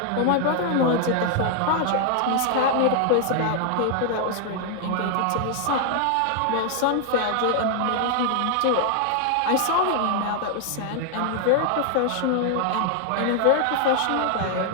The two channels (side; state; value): both; different; correlation 0.00